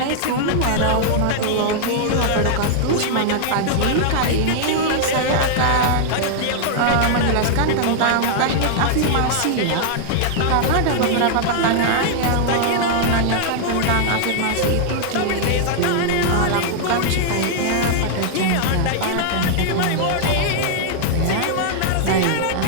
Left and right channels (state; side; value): different; both; correlation -0.01